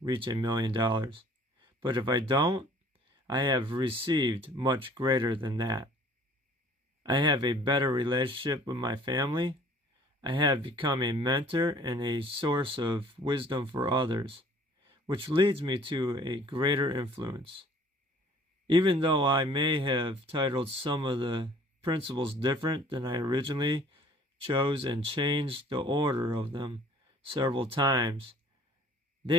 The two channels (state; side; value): normal; both; correlation 0.53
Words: $1 million, but if I don't, I have received much greater than that. I have a better relationship with my family. I have become a mentor and a source of wisdom for others, which leads me to a greater influence. Even though I may have titled some of the principles different than I originally chose and changed the order of them several times,